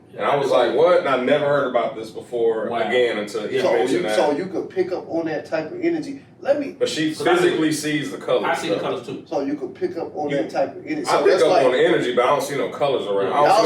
And I was like, what? And I never heard about this before again until he mentioned that. So you could pick up on that type of energy. But she physically sees the colors. I see the colors too. So you could pick up on that type of energy. I So pick that's up like, on the energy, but I don't see no colors around.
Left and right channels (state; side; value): identical; both; correlation 1.00